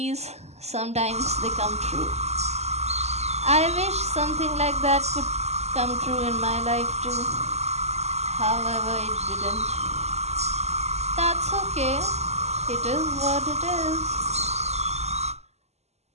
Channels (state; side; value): late; left; 0.32 ms